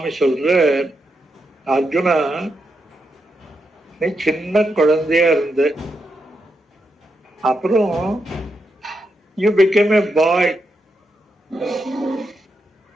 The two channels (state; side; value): normal; both; correlation 0.83